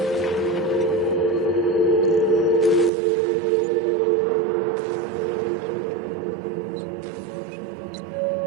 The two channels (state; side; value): drops out; left; at 2.9 s